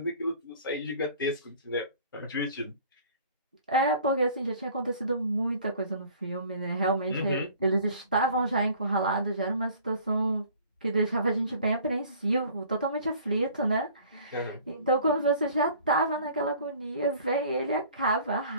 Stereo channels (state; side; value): inverted; both; correlation -0.50